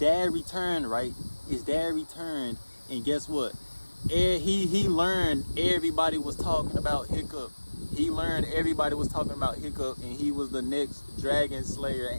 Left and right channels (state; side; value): inverted; both; correlation -1.00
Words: returned, right? His dad returned, and guess what? He learned everybody was talking about Hiccup. He learned everybody was talking about Hiccup, and he was the next dragon slayer.